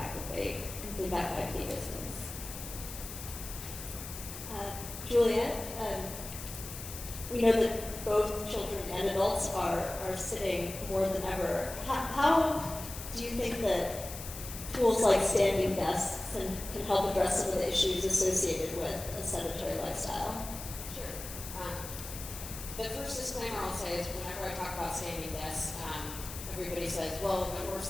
that they complete that 5K distance. Juliet, we know that both children and adults are sitting more than ever. How do you think that tools like standing desks can help address some of the issues associated with a sedentary lifestyle? Sure. The first disclaimer I'll say is whenever I talk about standing desks, everybody says, well, of course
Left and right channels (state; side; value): noise; left; hiss, 10 dB below the sound